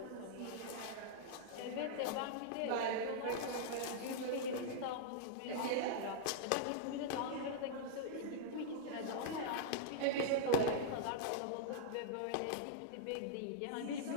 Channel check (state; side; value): different; both; correlation -0.02